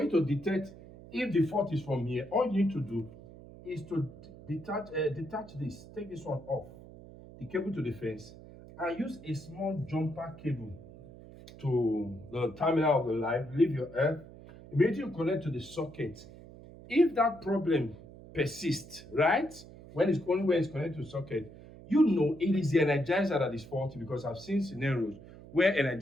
you to detect if the fault is from here, all you need to do is to detach this, take this one off, the cable to the fence, and use a small jumper cable to the terminal of the light, leave your earth, immediately you connect to the socket. If that problem persists, right, when it's connected to the socket, you know it is the energizer that is faulty, because I've seen scenarios where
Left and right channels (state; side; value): noise; right; hum, 18 dB below the sound